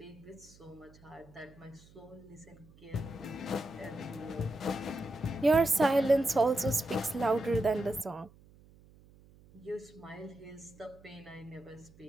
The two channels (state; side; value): noise; right; hum, 25 dB below the sound